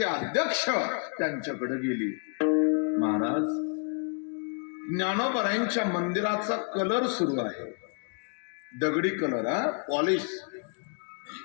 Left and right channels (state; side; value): quieter; right; 40.0 dB